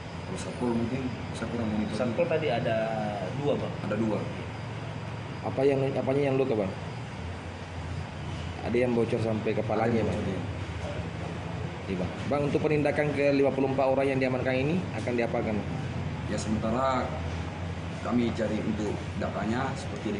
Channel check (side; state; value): both; identical; correlation 1.00